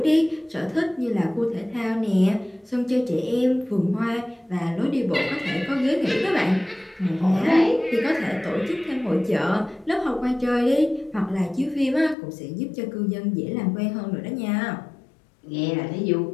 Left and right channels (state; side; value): drops out; right; at 12.2 s